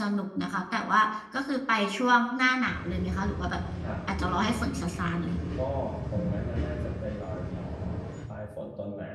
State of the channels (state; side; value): identical; both; correlation 1.00